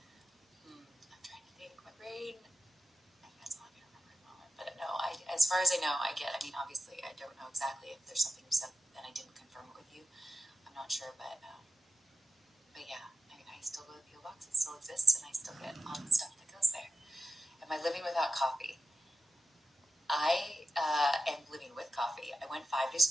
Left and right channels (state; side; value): normal; both; correlation 0.90